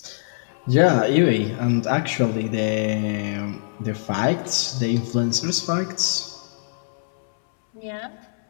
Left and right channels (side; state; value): right; silent; 63 dB below the other